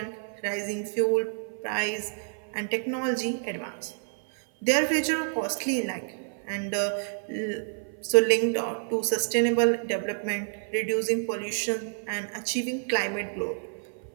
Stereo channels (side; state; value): left; silent; 55 dB below the other